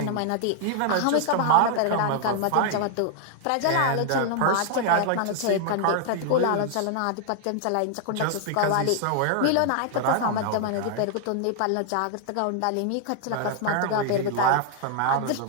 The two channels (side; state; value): both; different; correlation -0.01